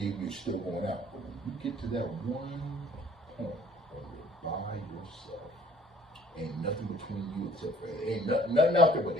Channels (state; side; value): normal; both; correlation 0.56